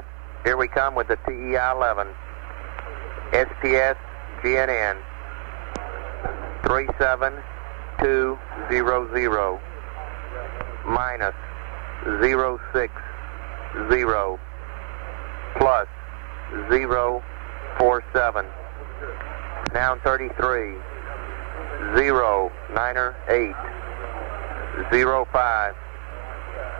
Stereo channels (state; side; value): silent; left; digital silence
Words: here we come with the TEI 11. SPS GNN 37200 minus 060 plus 047. Now 33. 0, Niner 8, 05,